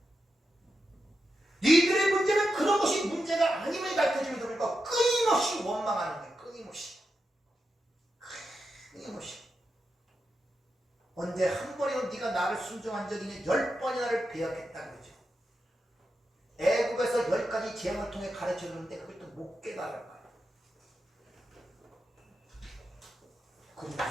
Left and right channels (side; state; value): both; normal; correlation 0.88